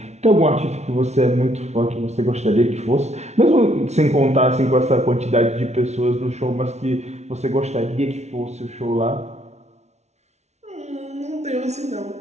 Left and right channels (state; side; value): late; left; 0.32 ms